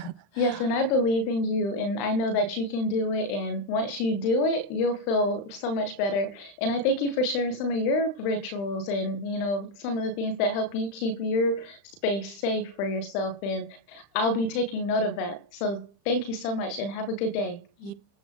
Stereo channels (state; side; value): late; right; 35 ms